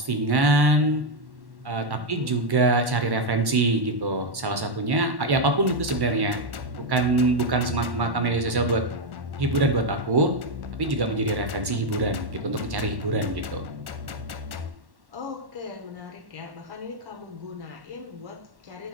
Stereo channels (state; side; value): late; left; 1.1 ms